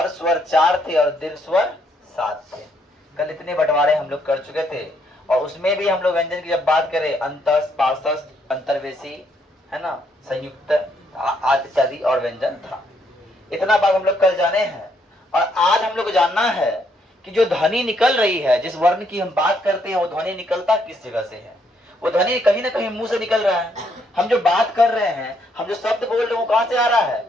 स्वर 4 थे और दीर्घ स्वर 7 थे। कल इतने बंटवारे हम लोग कर चुके थे। और उसमें भी हम लोग व्यंजन की जब बात करें अंतस्थ, पार्श्वस्थ, अंतर्वेशी, है ना, संयुक्त आदि इत्यादि और व्यंजन था। इतना बात हम लोग कल जाने हैं। और आज हम लोग को जानना है कि जो ध्वनि निकल रही है, जिस वर्ण की हम बात करते हैं, वो ध्वनि निकलता किस जगह से है। वो ध्वनि कहीं ना कहीं मुंह से निकल रहा है। हम जो बात कर रहे हैं, हम जो शब्द बोल रहे हैं, वो कहां से आ रहा है?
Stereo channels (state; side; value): normal; both; correlation 0.72